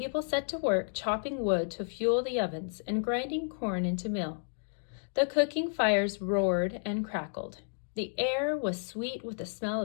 set to work chopping wood to fuel the ovens and grinding corn into meal. The cooking fires roared and crackled. The air was sweet with the smell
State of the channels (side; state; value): right; silent; digital silence